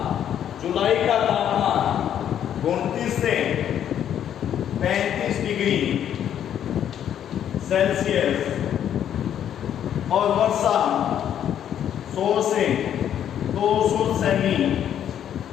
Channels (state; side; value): quieter; right; 9.9 dB